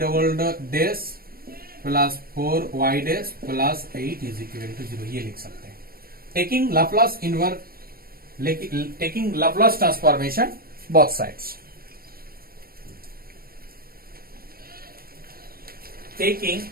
double dash plus 4y dash plus 8 is equal to 0, ये लिख सकते हैं taking Laplace inverse, taking Laplace transformation both sides, taking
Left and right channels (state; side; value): late; left; 0.43 ms